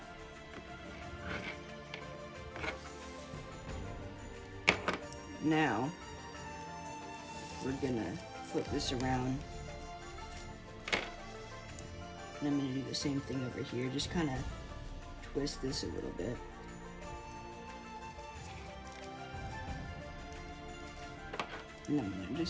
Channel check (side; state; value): both; identical; correlation 1.00